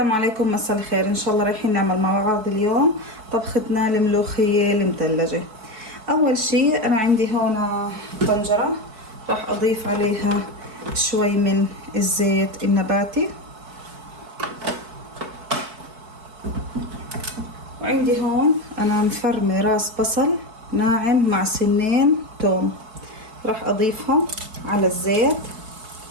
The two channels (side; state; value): left; late; 4.6 ms